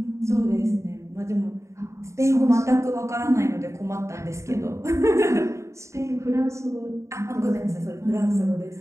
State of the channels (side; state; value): left; late; 0.14 ms